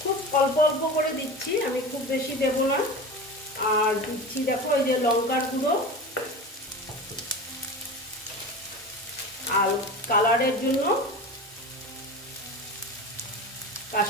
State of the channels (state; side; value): normal; both; correlation 0.30